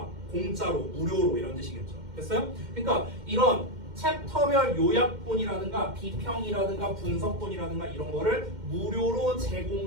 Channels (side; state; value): left; late; 2.1 ms